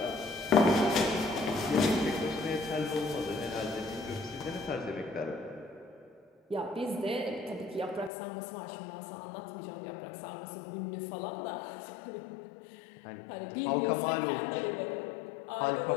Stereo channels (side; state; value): right; drops out; at 8.1 s